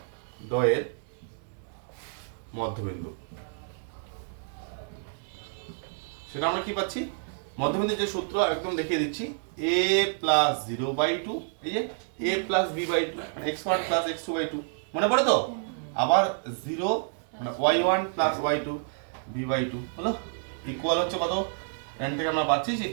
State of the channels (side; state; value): left; silent; digital silence